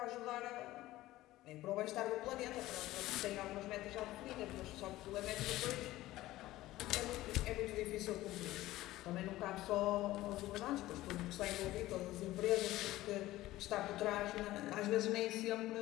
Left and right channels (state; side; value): quieter; right; 16.5 dB